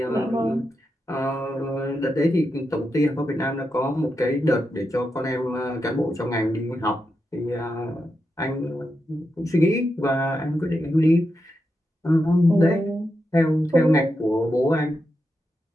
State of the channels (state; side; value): normal; both; correlation 0.86